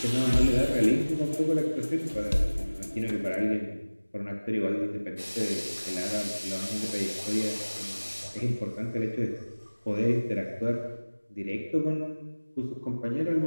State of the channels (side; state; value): both; inverted; correlation -1.00